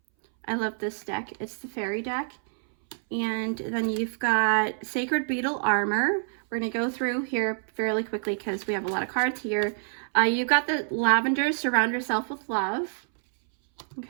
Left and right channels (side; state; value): left; silent; 60 dB below the other